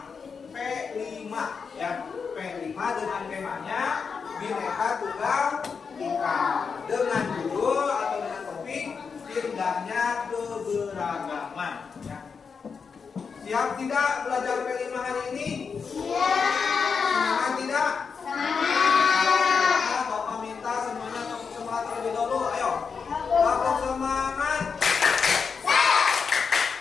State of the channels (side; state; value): right; quieter; 5.7 dB